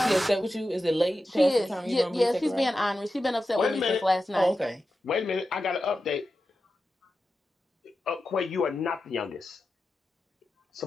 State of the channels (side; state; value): both; normal; correlation 0.91